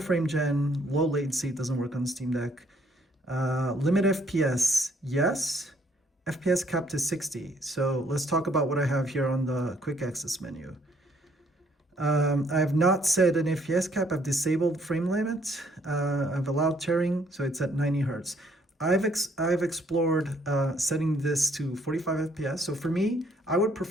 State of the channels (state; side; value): normal; both; correlation 0.66